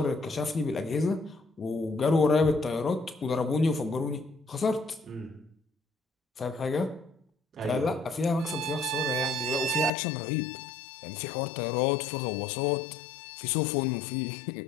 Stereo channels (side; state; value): right; drops out; at 9.9 s